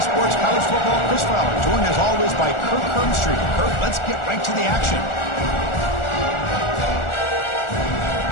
Sports College Football, Chris Fowler, joined as always by Kirk Hermstreet. Kirk, let's get right to the action.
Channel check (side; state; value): right; late; 1.4 ms